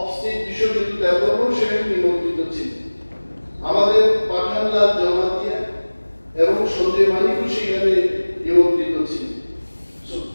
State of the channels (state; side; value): inverted; both; correlation -1.00